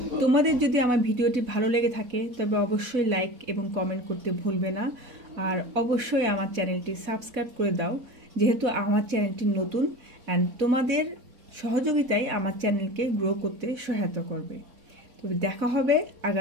তোমাদের যদি আমার ভিডিওটি ভালো লেগে থাকে তবে অবশ্যই লাইক এবং কমেন্ট করতে ভুলবে না, আর অবশ্যই আমার চ্যানেলটি সাবস্ক্রাইব করে দাও, যেহেতু আমার চ্যানেলটি নতুন অ্যান্ড তোমাদের সহযোগিতায় আমার চ্যানেলকে গ্রো করতে সহায়তা করবে। তবে দেখা হবে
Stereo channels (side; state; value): left; late; 4.1 ms